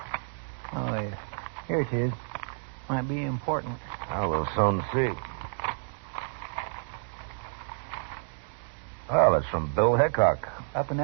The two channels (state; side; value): silent; left; digital silence